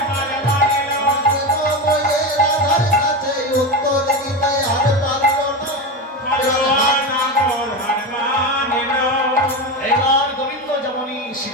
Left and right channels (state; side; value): normal; both; correlation 0.18